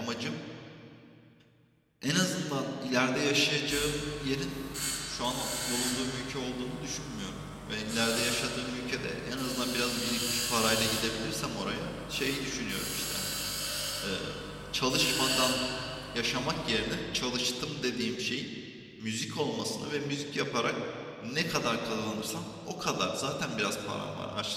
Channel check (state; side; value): identical; both; correlation 1.00